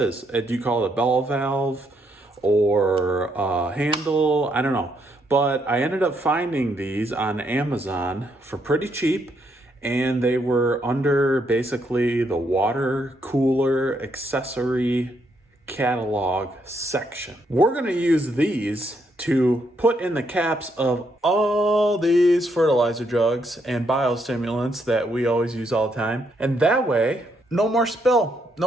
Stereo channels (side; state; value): both; normal; correlation 0.75